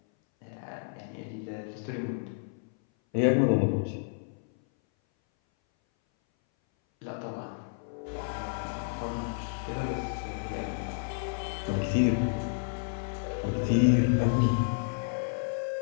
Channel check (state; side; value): silent; right; 57 dB below the other